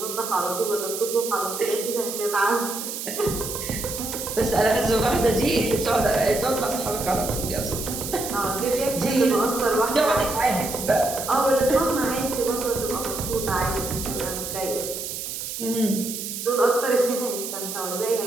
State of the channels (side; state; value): right; noise; hiss, 6 dB below the sound